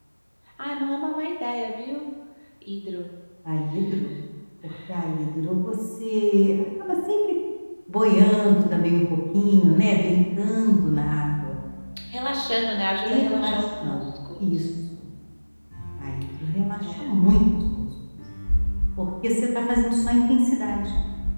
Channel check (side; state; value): both; inverted; correlation -1.00